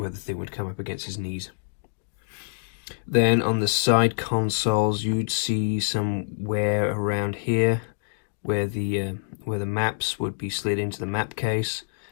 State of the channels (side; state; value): right; silent; digital silence